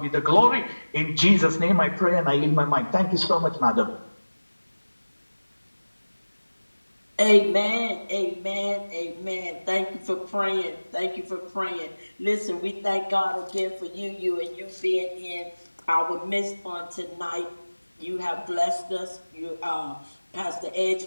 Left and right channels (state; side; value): inverted; both; correlation -1.00